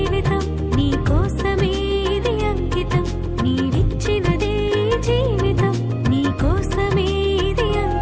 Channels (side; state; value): both; identical; correlation 1.00